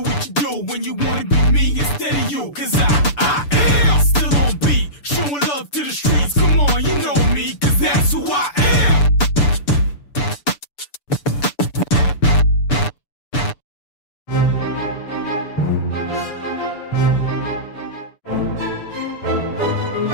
you do when you wanna be me instead of you, cause I am still on beat, showing love to the streets. Come on, you know me, cause that's who I am.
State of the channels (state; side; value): late; right; 6.9 ms